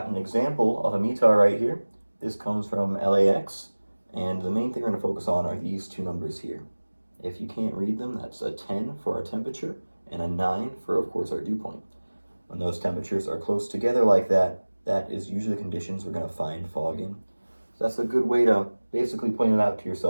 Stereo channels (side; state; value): both; inverted; correlation -1.00